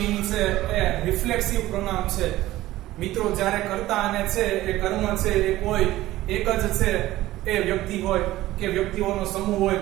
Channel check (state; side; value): quieter; left; 16.1 dB